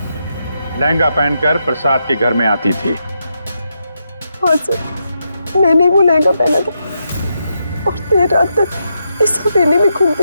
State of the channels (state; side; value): inverted; both; correlation -0.83